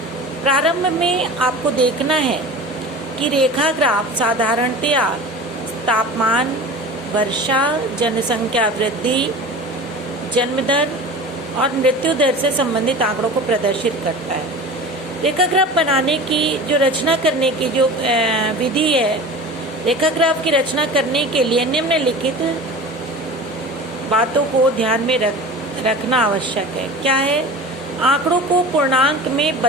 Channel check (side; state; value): both; normal; correlation 0.36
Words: प्रारंभ में आपको देखना है कि रेखा ग्राफ साधारणतया तापमान, वर्षा, जनसंख्या वृद्धि, जन्म दर और मृत्यु दर से संबंधित आंकड़ों को प्रदर्शित करता है। रेखा ग्राफ बनाने की जो रचना करने की जो विधि है, रेखा ग्राफ की रचना करने के लिए निम्नलिखित बातों को ध्यान में रखना आवश्यक है। क्या है? आंकड़ों को पूर्णांक में